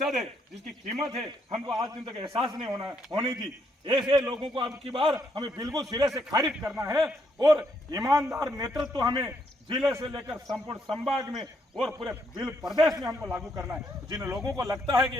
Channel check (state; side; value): normal; both; correlation 0.74